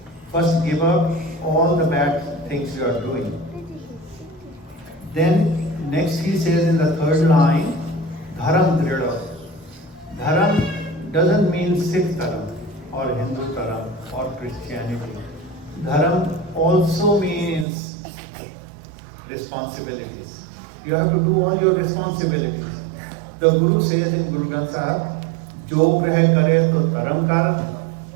first give up all the bad things you are doing. Then next he says in the 3rd line, Dharam Drida. Dharam doesn't mean Sikh Dharam or Hindu Dharam or Christianity. Dharam also means responsibilities. You have to do all your responsibilities. The Guru says in Guru Granth Sahib, जो ग्रह करे तो धर्म कर,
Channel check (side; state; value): left; drops out; at 17.7 s